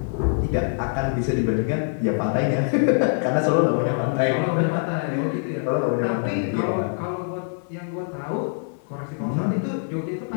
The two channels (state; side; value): silent; right; 63 dB below the other